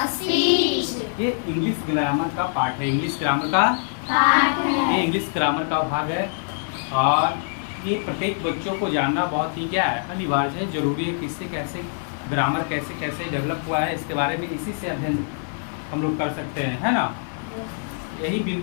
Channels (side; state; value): right; silent; digital silence